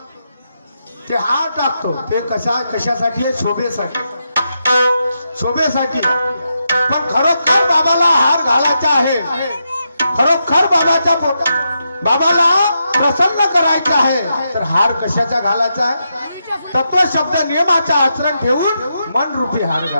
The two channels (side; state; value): both; inverted; correlation -0.84